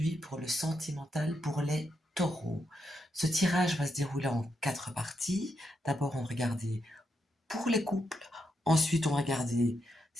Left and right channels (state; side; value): normal; both; correlation 0.82